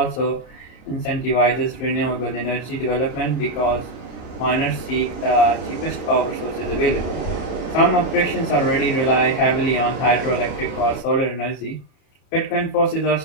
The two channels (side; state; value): right; late; 34 ms